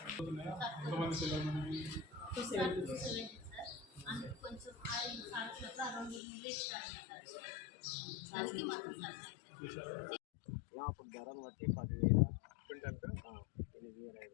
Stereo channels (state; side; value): drops out; right; at 6.2 s